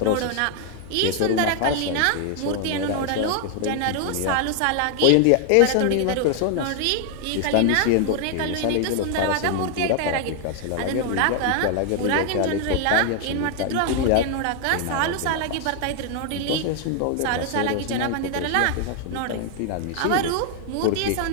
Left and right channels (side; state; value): both; different; correlation 0.00